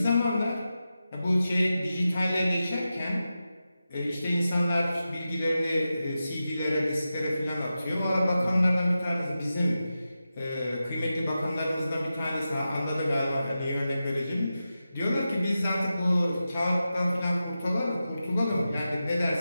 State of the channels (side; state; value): both; inverted; correlation -0.92